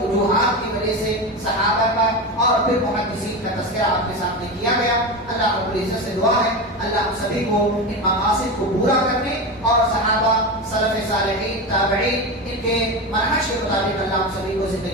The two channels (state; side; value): normal; both; correlation 0.20